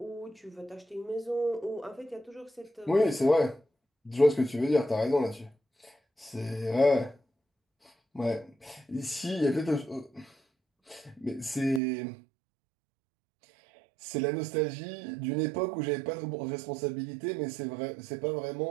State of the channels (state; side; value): drops out; left; at 11.8 s